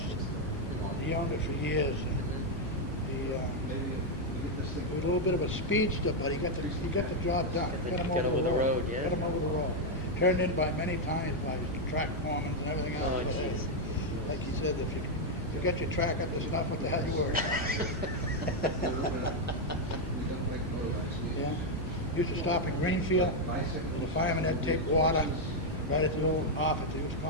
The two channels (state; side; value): normal; both; correlation 0.01